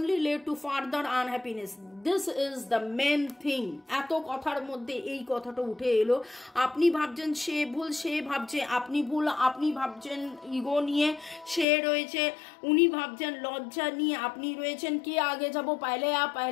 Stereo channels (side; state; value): right; drops out; at 11.7 s